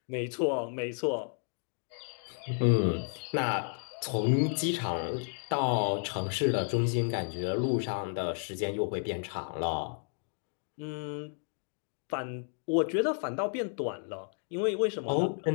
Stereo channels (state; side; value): silent; right; 56 dB below the other